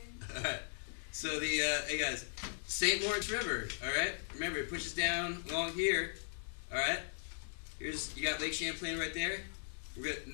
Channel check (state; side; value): silent; right; digital silence